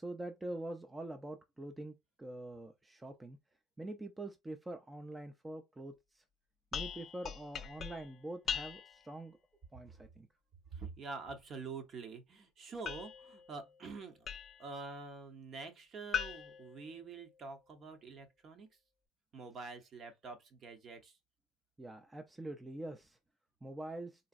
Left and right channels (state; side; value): normal; both; correlation 0.71